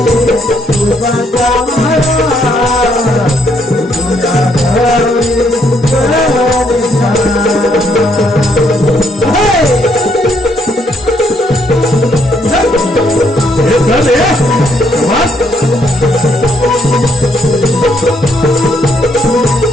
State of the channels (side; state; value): both; normal; correlation 0.72